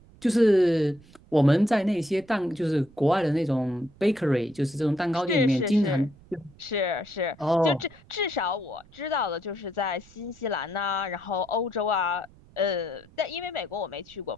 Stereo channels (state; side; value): noise; right; rumble, 25 dB below the sound